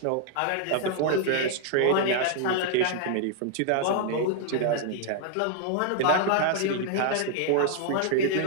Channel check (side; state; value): both; different; correlation 0.00